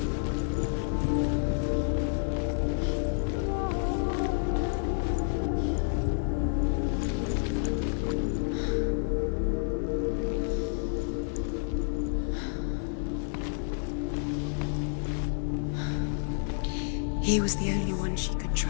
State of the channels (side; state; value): right; silent; 58 dB below the other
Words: He was the only one she could